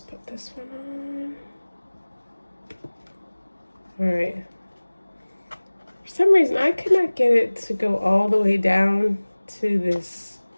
this one on. All right. For some reason, I could not get it to go all the way down to this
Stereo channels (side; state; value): both; inverted; correlation -1.00